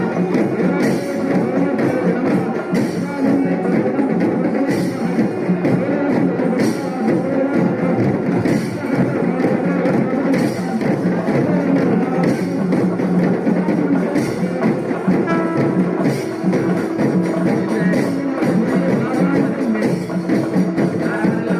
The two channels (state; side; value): identical; both; correlation 1.00